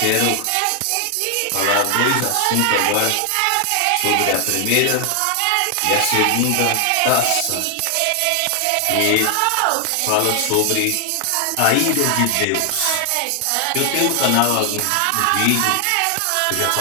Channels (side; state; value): both; different; correlation 0.00